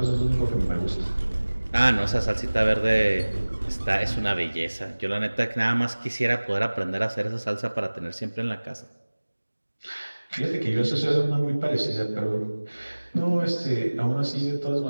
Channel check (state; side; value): inverted; both; correlation -1.00